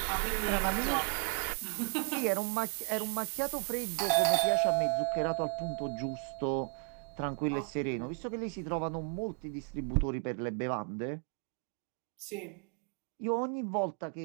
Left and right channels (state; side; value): quieter; left; 38.1 dB